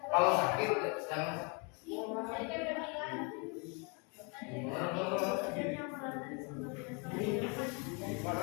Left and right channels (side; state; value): right; quieter; 34.0 dB